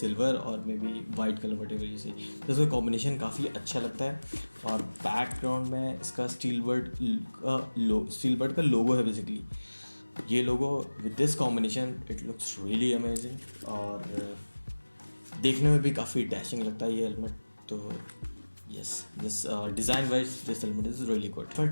और maybe white colour whatever you see. तो इसका कॉम्बिनेशन काफ़ी अच्छा लगता है। और बैकग्राउंड में इसका स्टीलबर्ड का लोगो है बेसिकली। ये लोगो with this combination it looks really amazing, और देखने में भी काफ़ी डैशिंग लगता है ये हेलमेट। तो yes, this design wise this helmet is really good. फट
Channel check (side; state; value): both; inverted; correlation -1.00